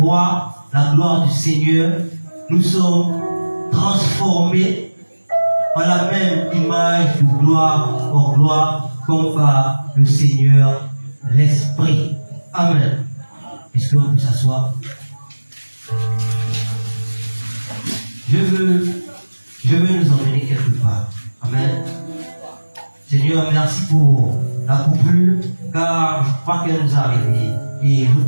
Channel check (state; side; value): inverted; both; correlation -1.00